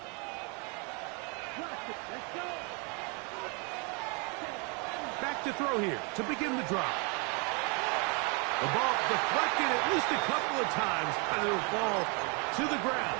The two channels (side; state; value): left; quieter; 33.4 dB